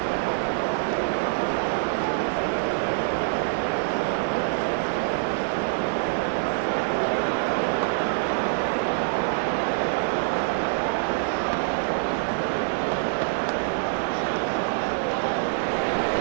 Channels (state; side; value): silent; left; digital silence